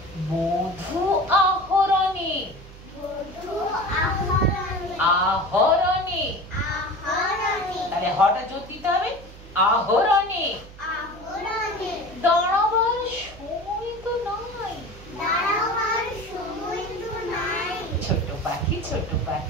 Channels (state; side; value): noise; right; hum, 18 dB below the sound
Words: মধু আহরণে। আহরণে তাহলে হটা জোর দিতে হবে, আহরণে। দাঁড়াবার সময় তো নাই। ছোট পাখি ছোট